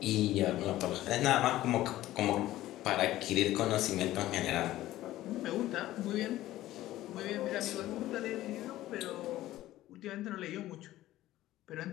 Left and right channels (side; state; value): right; quieter; 15.1 dB